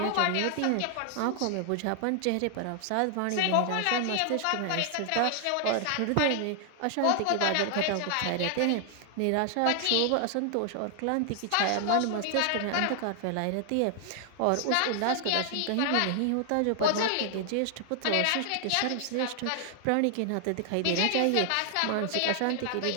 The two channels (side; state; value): both; different; correlation 0.00